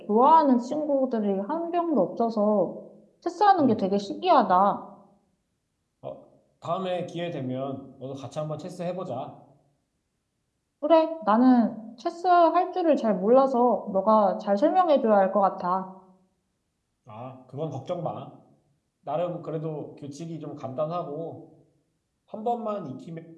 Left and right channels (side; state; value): both; identical; correlation 1.00